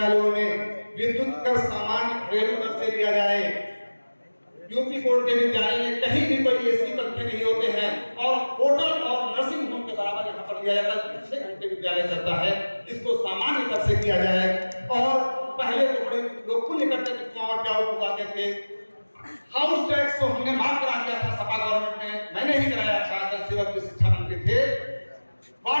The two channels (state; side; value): inverted; both; correlation -1.00